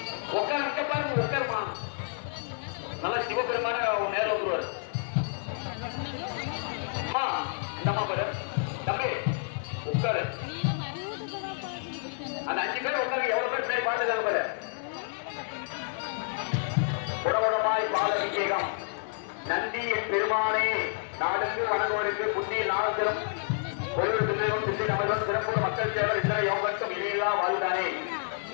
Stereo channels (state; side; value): silent; right; digital silence